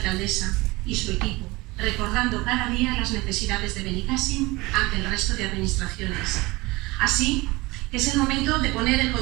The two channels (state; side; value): quieter; left; 22.3 dB